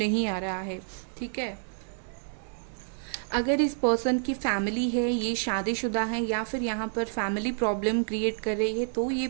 आ रहा है। ठीक है, अगर इस पर्सन की फैमिली है, ये शादीशुदा है या फिर यहाँ पर फैमिली प्रॉब्लम क्रिएट कर रही है, तो ये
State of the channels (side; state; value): left; silent; digital silence